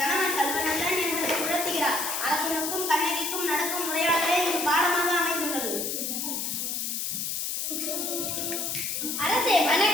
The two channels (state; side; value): noise; left; hiss, 2 dB below the sound